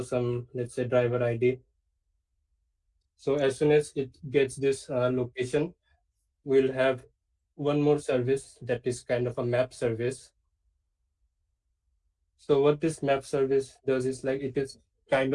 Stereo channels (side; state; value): both; identical; correlation 1.00